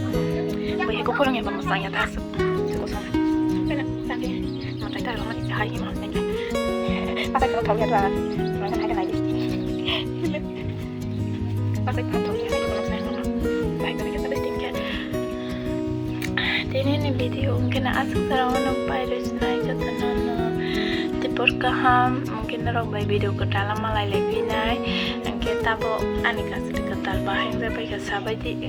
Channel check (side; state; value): both; identical; correlation 1.00